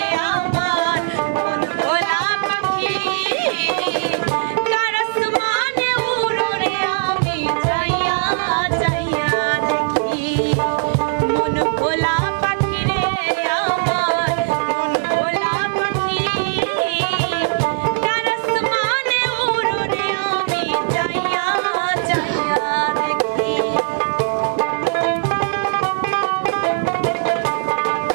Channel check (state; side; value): silent; left; digital silence